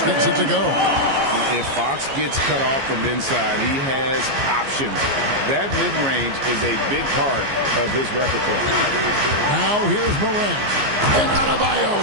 gets it to go. If Fox gets cut off from inside, he has options. That mid-range is a big part of his repertoire. Now here's Morant. And Adebayo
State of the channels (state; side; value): late; left; 15 ms